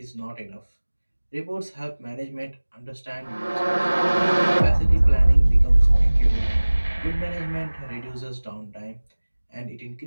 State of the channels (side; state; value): both; inverted; correlation -1.00